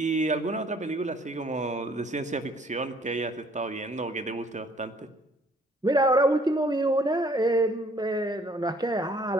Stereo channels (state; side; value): normal; both; correlation 0.60